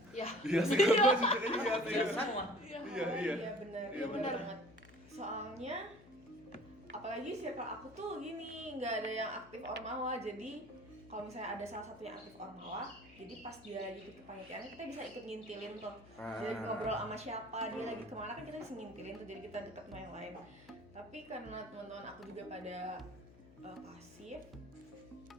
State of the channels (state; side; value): noise; left; hum, 21 dB below the sound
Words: Ya. Iya sih, gue juga iya sih. Ya semua. Iya, Iya, awalnya iya. iya benar. Iya, Iya benar. banget. Soalnya apalagi circle aku tuh gini, nggak ada yang aktif ormawa. Jadi kalau misalnya ada salah satu yang aktif ormawa, jadi pas dia lagi ikut kepanitiaan kita bisa ikut ngintilin tuh. Jadi ngobrol sama siapa, dia lagi kemana kan kita bisa ngintilin tuh, jadi kita deket sama yang lain. Tapi karena teman-teman aku juga pada pasif,